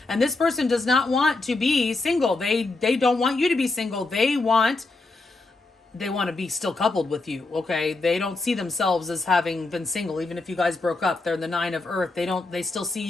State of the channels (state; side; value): quieter; right; 3.4 dB